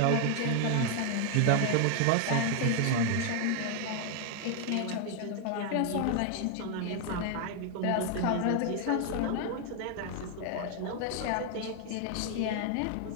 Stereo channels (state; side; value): different; both; correlation 0.00